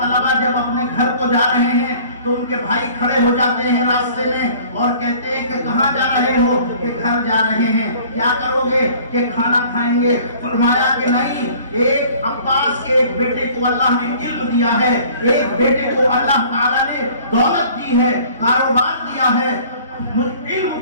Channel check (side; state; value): both; inverted; correlation -0.51